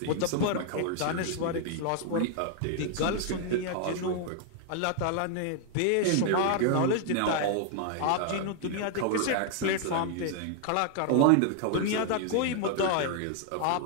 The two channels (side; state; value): both; different; correlation 0.00